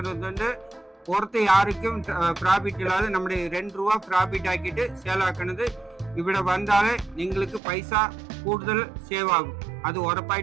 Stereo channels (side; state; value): left; drops out; at 7.6 s